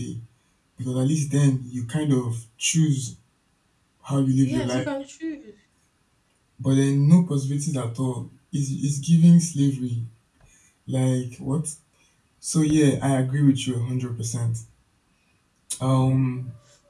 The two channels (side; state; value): both; identical; correlation 1.00